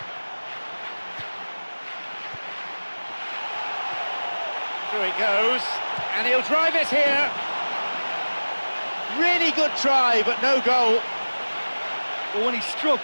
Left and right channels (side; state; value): both; inverted; correlation -1.00